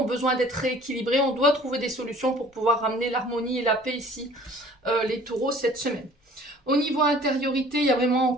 besoin d'être rééquilibrés. On doit trouver des solutions pour pouvoir ramener l'harmonie et la paix ici, les taureaux, cette semaine. Au niveau intériorité, il y a vraiment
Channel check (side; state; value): both; normal; correlation 0.50